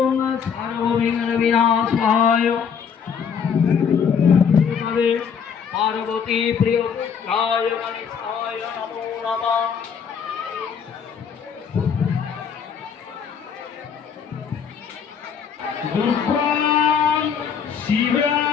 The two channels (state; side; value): quieter; right; 7.0 dB